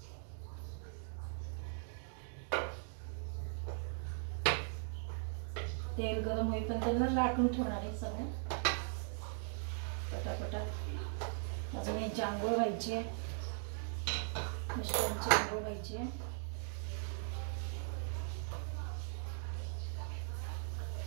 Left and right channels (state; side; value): silent; left; 51 dB below the other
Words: तेल गरम होईपर्यंत त्यांना लाटून ठेवणार आहे सगळं पटापटा. अजून यांची आंघोळ व्हायची आहे, मिस्टरांची आंघोळ व्हायची आहे.